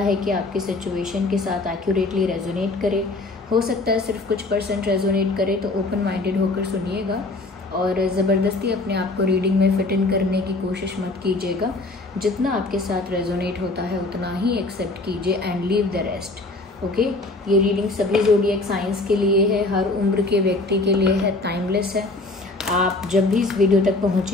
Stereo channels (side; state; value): right; quieter; 3.1 dB